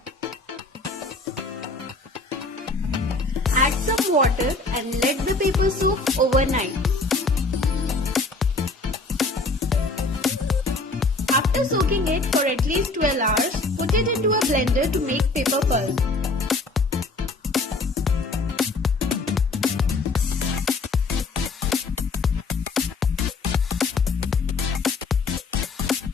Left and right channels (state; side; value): quieter; right; 3.4 dB